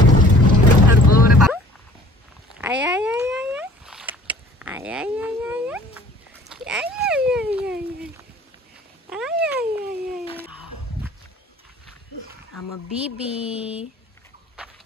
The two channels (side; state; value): both; normal; correlation 0.51